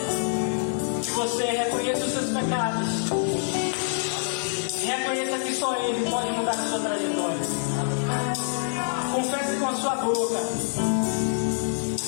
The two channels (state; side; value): silent; right; 61 dB below the other